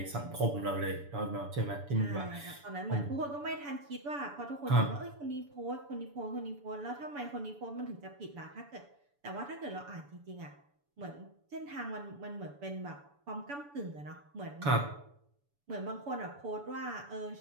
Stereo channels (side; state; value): left; late; 7.0 ms